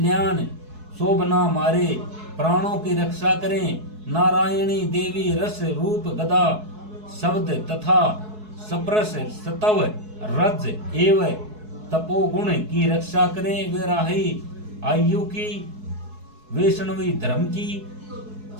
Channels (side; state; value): left; late; 4.7 ms